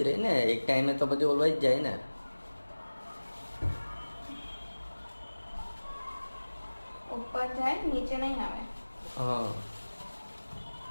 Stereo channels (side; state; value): both; inverted; correlation -1.00